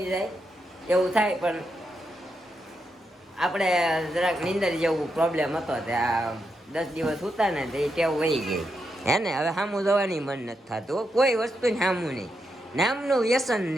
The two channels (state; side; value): normal; both; correlation 0.84